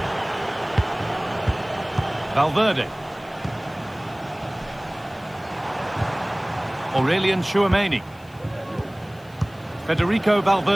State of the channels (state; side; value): noise; left; hiss, 28 dB below the sound